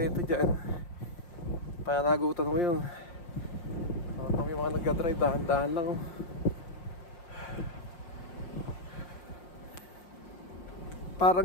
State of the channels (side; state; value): right; late; 5.7 ms